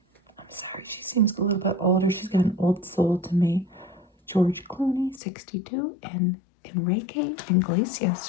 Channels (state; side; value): drops out; right; at 5.2 s